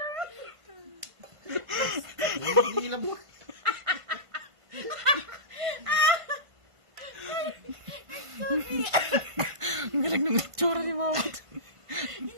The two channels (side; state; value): left; late; 1.5 ms